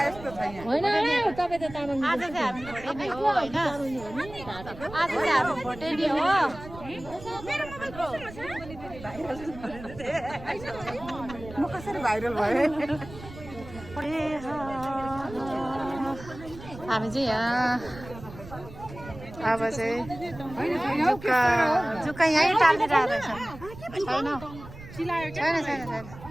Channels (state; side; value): noise; right; rumble, 15 dB below the sound